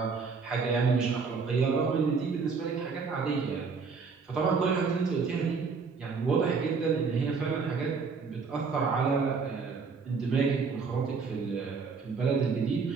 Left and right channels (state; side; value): quieter; left; 5.0 dB